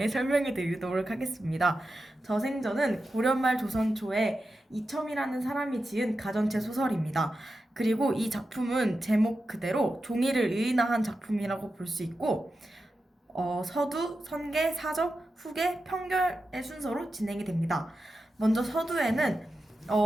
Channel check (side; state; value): both; normal; correlation 0.90